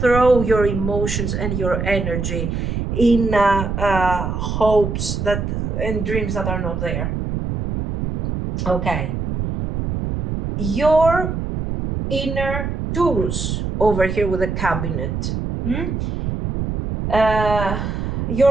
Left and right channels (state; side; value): noise; right; rumble, 3 dB below the sound